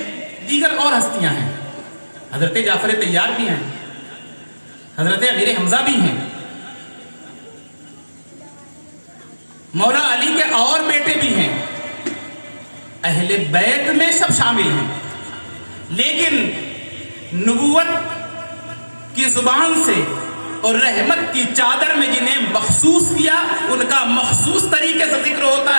دیگر اور ہستیاں ہیں. حضرت جعفر طیار بھی ہیں، حضرت امیر حمزہ بھی ہیں، مولا علی کے اور بیٹے بھی ہیں. اہل بیت میں سب شامل ہیں، لیکن نبوت کی زبان سے اور رحمت کی چادر میں جنہیں مخصوص کیا ان کا مخصوص طریقے سے ذکر ہوتا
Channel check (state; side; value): inverted; both; correlation -1.00